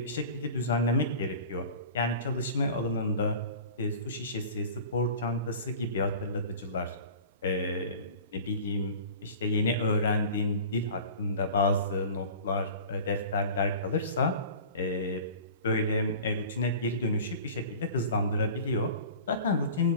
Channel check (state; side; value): inverted; both; correlation -0.39